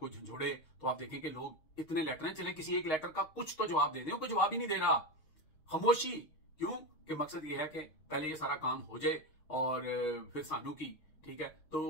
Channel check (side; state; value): right; late; 6.4 ms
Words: झंझोड़े तो आप देखें कि लोग इतने लेटर हैं, चले किसी एक लेटर का कुछ तो जवाब दे दें। कोई जवाब ही नहीं दे रहा, खामोशी। क्यों? कि मकसद ये है कि पहले ये सारा काम हो जाए और फिर सानू की, ठीक है। तो